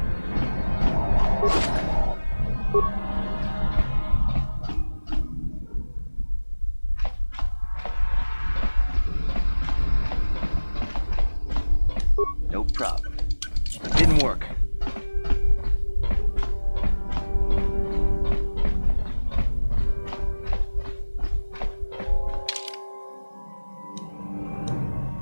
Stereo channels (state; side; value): inverted; both; correlation -1.00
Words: problem. It didn't work.